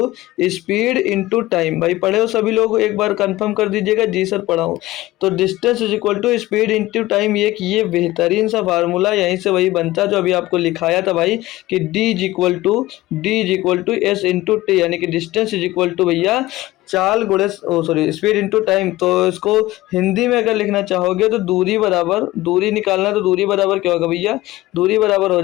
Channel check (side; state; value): right; quieter; 17.6 dB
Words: speed into time. भाई पढ़े हो सभी लोग, एक बार कंफर्म कर दीजिएगा, जी सर पढ़ा हूँ। तो distance is equal to speed into time, ये बेहतरीन सा फार्मूला यहीं से वही बनता है जो अभी आपको लिखाया था भाई, कि D is equal to S into T, यानी कि डिस्टेंस इज इक्वल टू भैया चाल गुणे स्पीड इंटू टाइम। तो इसको हिंदी में अगर लिखना चाहोगे तो दूरी बराबर, दूरी निकालना तो दूरी बराबर क्या होगा भैया, दूरी बराबर हो